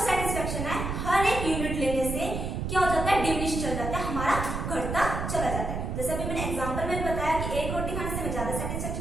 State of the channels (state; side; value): noise; right; rumble, 3 dB below the sound